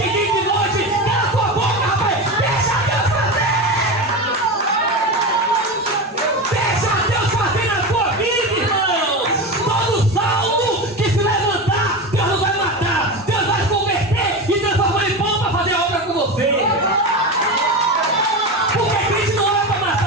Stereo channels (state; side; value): normal; both; correlation 0.22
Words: e de noite. Cala a tua boca, rapaz! Deixa Deus fazer! Deixa Deus fazer na tua vida, irmão! Todo salmo que se levantar, Deus não vai matar, Deus vai converter e transformar em pão para fazer a obra com você. Porque Cristo não é para